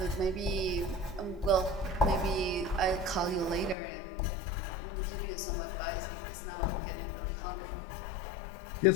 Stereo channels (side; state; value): right; drops out; at 3.8 s